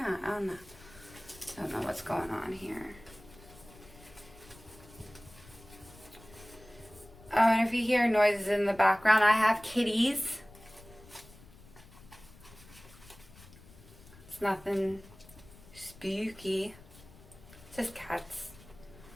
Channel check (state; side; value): noise; left; rumble, 21 dB below the sound